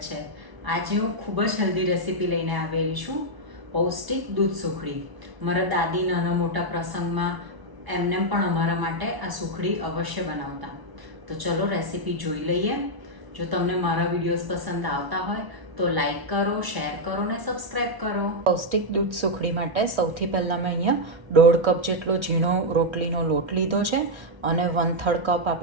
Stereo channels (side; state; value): left; late; 1.1 ms